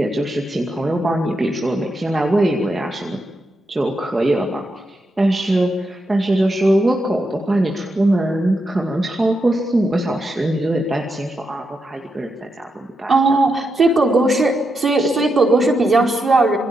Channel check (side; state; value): both; normal; correlation 0.84